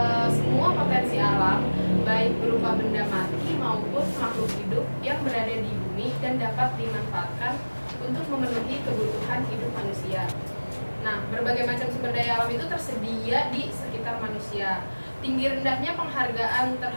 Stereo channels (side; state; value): both; inverted; correlation -1.00